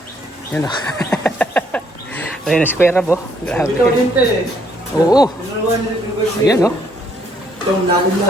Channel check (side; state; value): both; normal; correlation 0.68